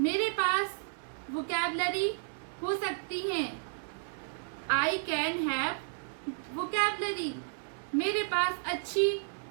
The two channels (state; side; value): silent; left; digital silence